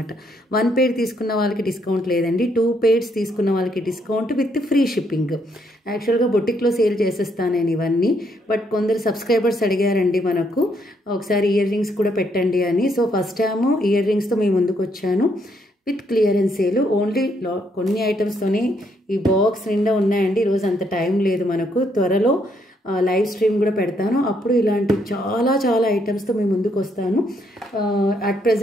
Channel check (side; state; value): both; normal; correlation 0.73